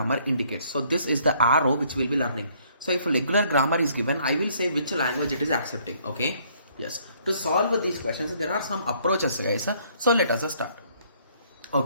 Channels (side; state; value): both; inverted; correlation -0.64